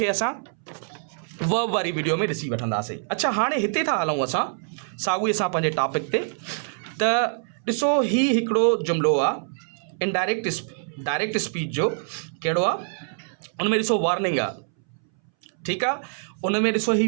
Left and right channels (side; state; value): left; silent; 61 dB below the other